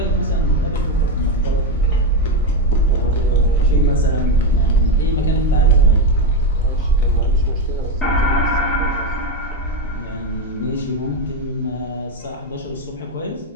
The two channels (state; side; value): normal; both; correlation 0.11